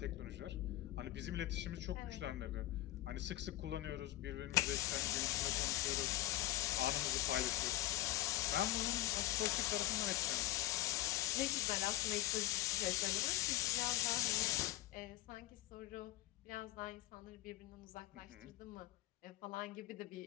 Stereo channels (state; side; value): quieter; right; 15.5 dB